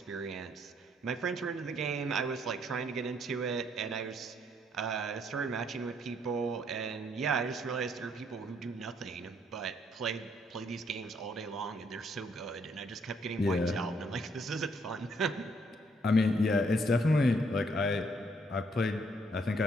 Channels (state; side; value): normal; both; correlation 0.69